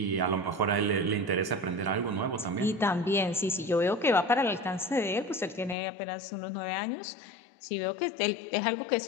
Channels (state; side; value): drops out; right; at 5.8 s